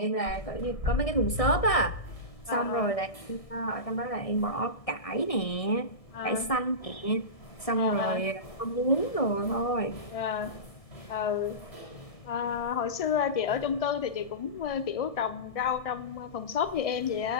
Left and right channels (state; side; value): late; right; 1.6 ms